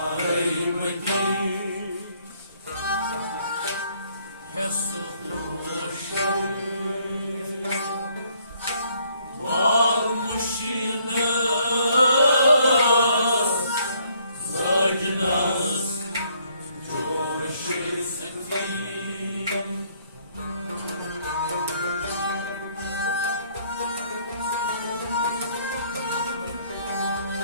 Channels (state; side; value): inverted; both; correlation -0.66